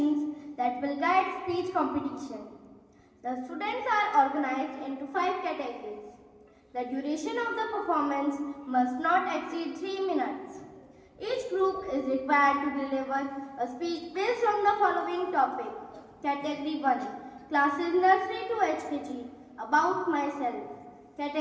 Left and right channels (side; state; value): both; identical; correlation 1.00